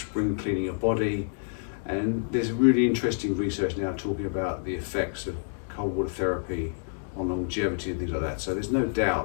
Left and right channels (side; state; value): right; silent; digital silence